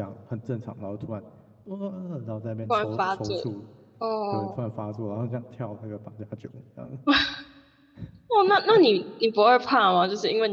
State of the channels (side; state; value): both; identical; correlation 1.00